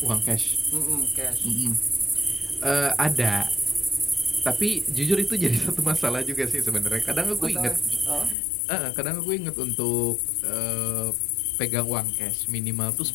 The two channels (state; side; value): drops out; right; at 8.3 s